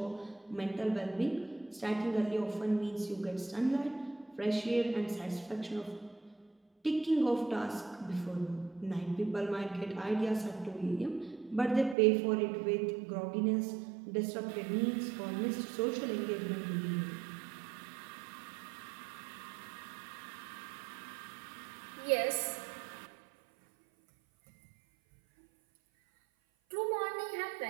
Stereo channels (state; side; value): drops out; left; at 12.0 s